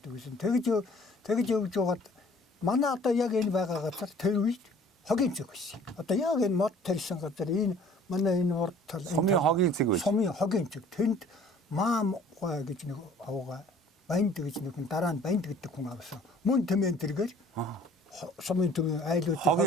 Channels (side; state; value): both; normal; correlation 0.52